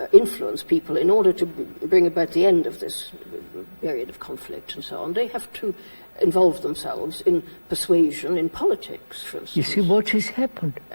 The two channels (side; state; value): both; inverted; correlation -1.00